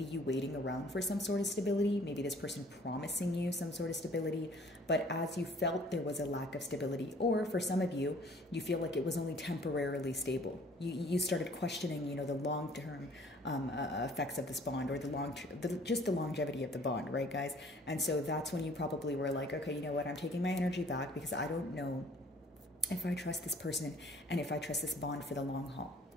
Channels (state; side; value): normal; both; correlation 0.55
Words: you waiting around for some sort of stability, maybe this person promising you some sort of stability, but as you felt there was a lack of stability, or for some of you, you feel like it was only temporarily stable. You started questioning, you know, the long-term effects of this bond, or just the longevity of the bond, right, guys? And so that's when you probably were like, okay, you know what, I'm taking my energy back because I don't know if I trust this person and if I trust this bond for the long haul,